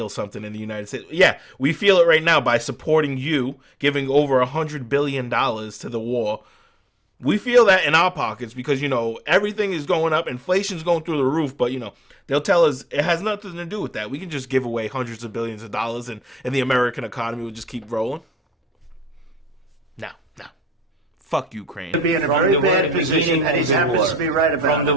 something in the United States? Yeah, we feel it right now by supporting you, giving over $100 billion to the war. We feel that in our pockets because, you know, everything is going up. Inflation's going through the roof. But, you know, they'll tell us it has nothing to do with that. We can just give away hundreds of billions of dollars and the American economy will just keep rolling. No. Fuck Ukraine. be in a From very the bad very position, beginning and he of the happens war. to be right about From the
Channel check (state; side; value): normal; both; correlation 0.75